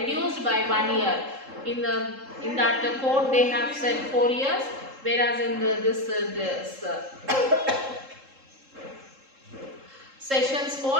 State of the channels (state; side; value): late; left; 3.7 ms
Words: by 1 year. In that court they have said 4 years, whereas in this sessions